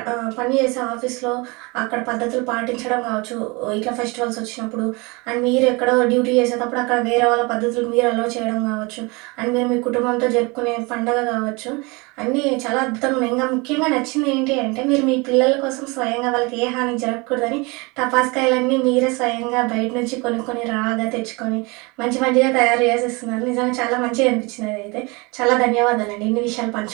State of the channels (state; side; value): quieter; left; 27.0 dB